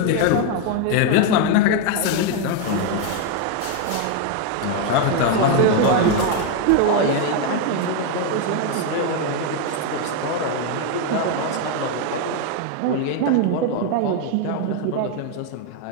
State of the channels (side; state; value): both; different; correlation 0.01